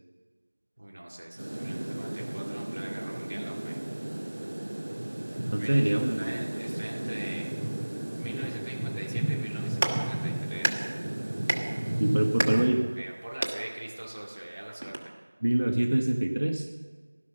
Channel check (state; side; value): inverted; both; correlation -1.00